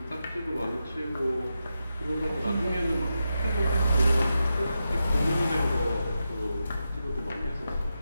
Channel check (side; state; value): both; inverted; correlation -0.88